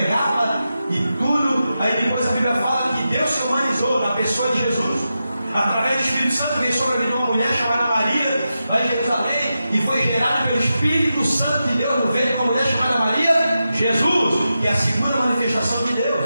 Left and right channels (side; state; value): both; inverted; correlation -0.90